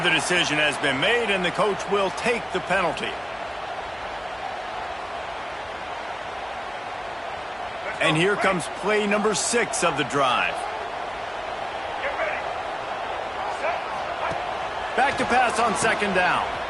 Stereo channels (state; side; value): noise; left; hum, 29 dB below the sound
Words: decision has been made, and the coach will take the penalty. And here comes play number 6 of the drive. Back to pass on 2nd down.